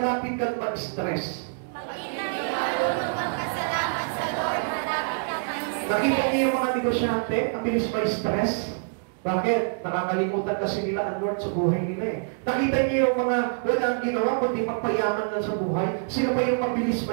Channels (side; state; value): left; silent; digital silence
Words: kang mag-stress. Pag hindi marunong magpasalamat sa Lord, malapit kang mag-stress. Nakita niyo yung mga negosyante, ang bilis ma-stress. Bakit? Nakakalimutan kasi nila ang Lord sa buhay nila eh. Nakita niyo yung mga walang ginawa, kundi magpayaman lang sa buhay. Sino ba yung mabilis